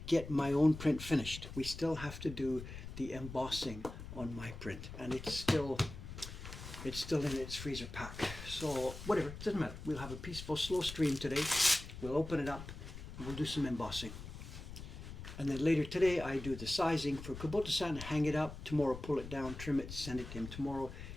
get my own print finished. We still have to do the embossing on my print, and it's still in its freezer pack. So whatever, it doesn't matter. We'll have a peaceful, slow stream today. We'll open it up, and we'll do some embossing. And then later today, I do the sizing for Kubota-san, hang it up. Tomorrow, pull it down, trim it, send it to him tomorrow.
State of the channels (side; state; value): left; noise; rumble, 11 dB below the sound